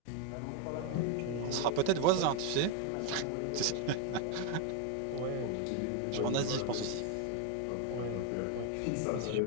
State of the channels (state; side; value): different; both; correlation 0.01